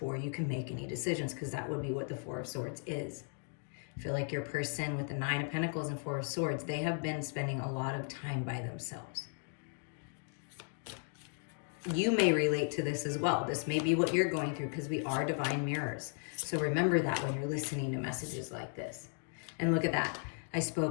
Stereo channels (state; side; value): silent; right; 54 dB below the other